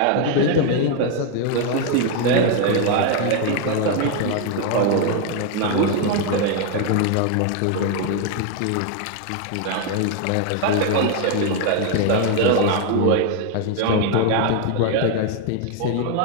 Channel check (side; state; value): both; different; correlation 0.01